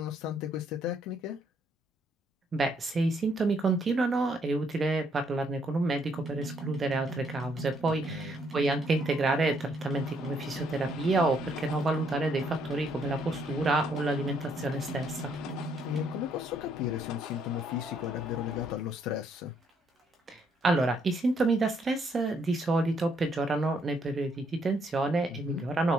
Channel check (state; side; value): normal; both; correlation 0.71